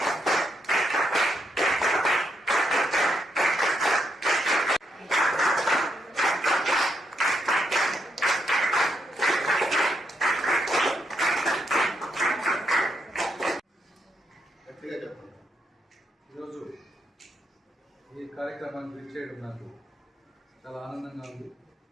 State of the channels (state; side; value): normal; both; correlation 0.79